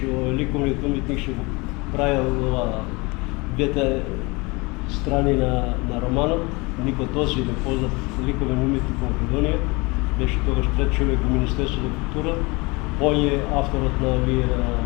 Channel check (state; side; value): quieter; right; 25.9 dB